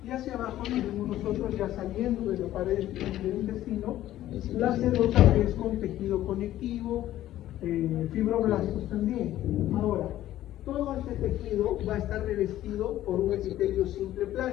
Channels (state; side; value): quieter; right; 13.6 dB